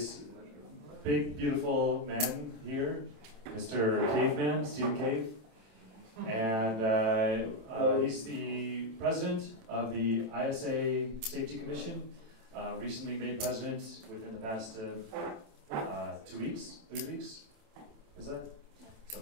big, beautiful man here, Mr. Caveman, Stephen Cave, and he's the president of the ISA Safety Commission, recently made president within the past 2 weeks, 3 weeks, is that?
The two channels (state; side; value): late; left; 27 ms